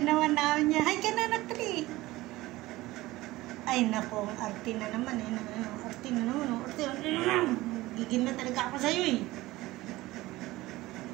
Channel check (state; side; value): quieter; left; 18.5 dB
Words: naman namin niya. Hi ka na, anak, dali. Ay, nako. Arte na naman. Arte na naman. Gigil na talaga ako sa'yo eh.